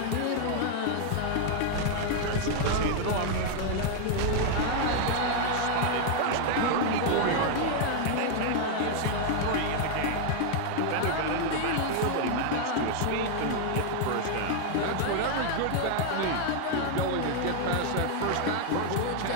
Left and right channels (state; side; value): different; both; correlation 0.00